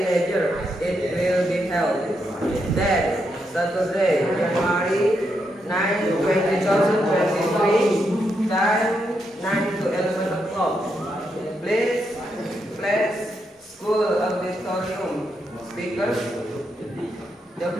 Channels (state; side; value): normal; both; correlation 0.81